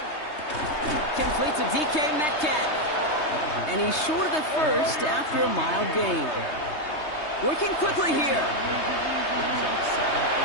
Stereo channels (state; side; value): late; right; 3.2 ms